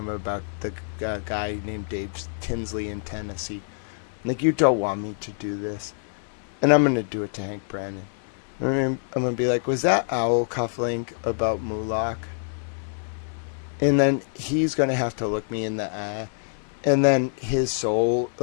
about the guy named Dave Tinsley in Tennessee. Like, you don't want me to do this. And I'm going to do it to Hank Brennan. I'm going to be like, was that owl cufflink about Moloch? And then he's going to have to look me in the eye. And then his soul,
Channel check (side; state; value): right; silent; 61 dB below the other